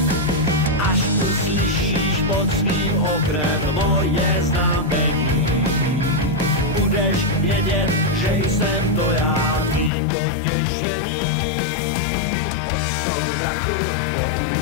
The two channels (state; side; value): drops out; right; at 9.9 s